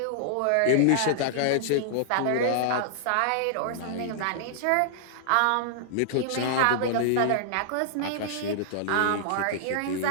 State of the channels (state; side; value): different; both; correlation -0.01